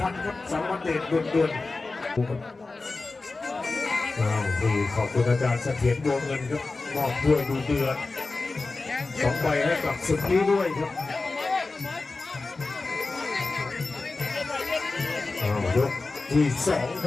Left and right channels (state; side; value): quieter; right; 3.6 dB